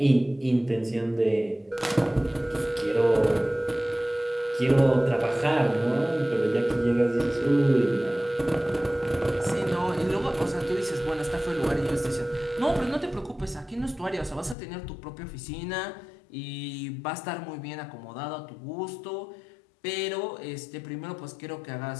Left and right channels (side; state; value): right; drops out; at 14.6 s